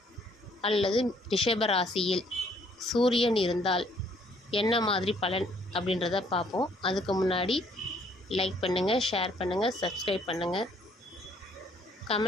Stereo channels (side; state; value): both; normal; correlation 0.64